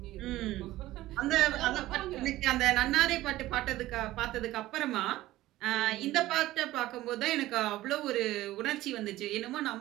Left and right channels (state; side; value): quieter; left; 16.2 dB